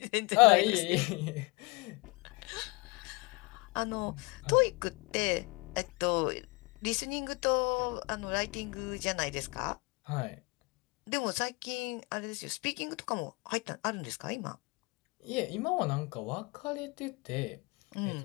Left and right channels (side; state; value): right; quieter; 27.0 dB